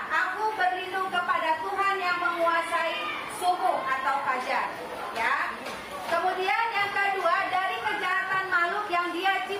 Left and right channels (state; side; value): identical; both; correlation 1.00